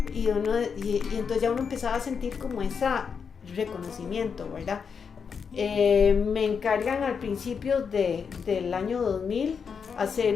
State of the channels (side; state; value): right; quieter; 6.2 dB